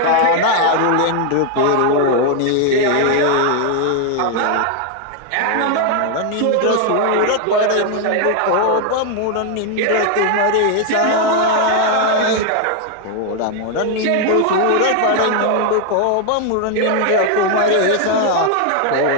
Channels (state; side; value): different; both; correlation 0.00